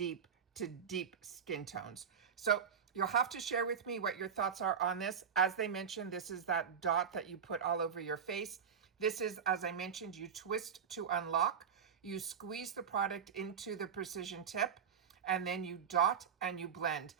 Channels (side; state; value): left; quieter; 7.2 dB